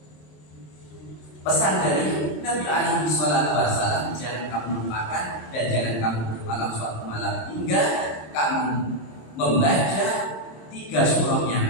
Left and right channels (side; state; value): right; late; 26 ms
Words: pesan dari Nabi alaihi salatu wasallam, jangan kamu lupakan dan jangan kamu bermalam suatu malam hingga kamu membaca 3 surah yang